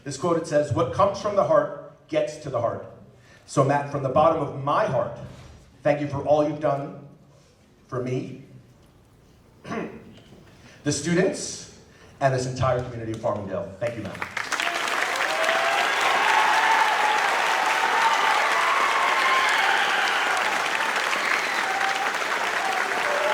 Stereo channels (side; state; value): both; identical; correlation 1.00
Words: This quote, it says, "What comes from the heart gets to the heart." So Matt, from the bottom of my heart, thank you for all you've done for me, the students, and this entire community of Farmingdale. Thank you, Matt.